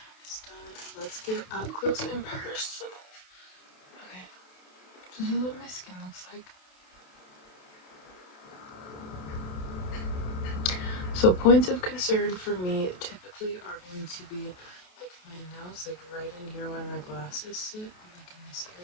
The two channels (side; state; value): right; late; 28 ms